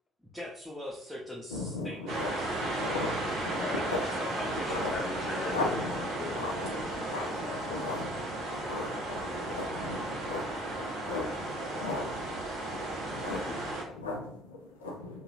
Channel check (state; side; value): normal; both; correlation 0.49